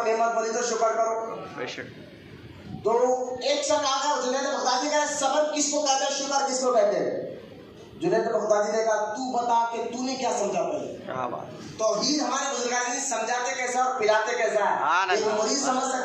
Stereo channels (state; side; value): identical; both; correlation 1.00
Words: نعمت ملی تو شکر کرو۔ تو ایک شخص آ گیا جنید بغدادی کہا صبر کس کو کہتے ہیں، شکر کس کو کہتے ہیں؟ جنید بغدادی نے کہا تو بتا کہ تو نے کیا سمجھا پہلے۔ توحید ہمارے بزرگان سمجھاتے کیسا اور پلاتے کیسا ہے۔ ایک مرید سمجھ